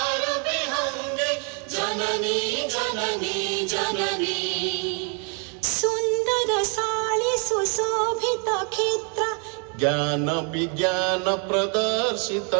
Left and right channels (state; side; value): quieter; left; 37.7 dB